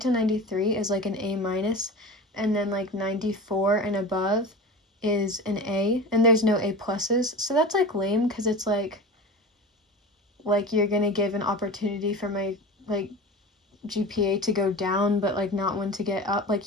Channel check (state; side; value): normal; both; correlation 0.32